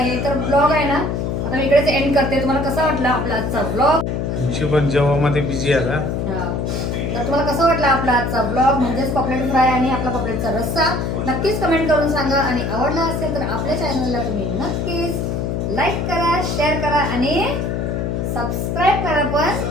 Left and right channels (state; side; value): noise; left; hum, 1 dB below the sound